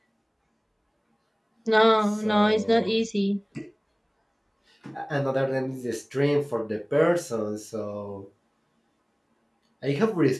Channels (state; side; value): identical; both; correlation 1.00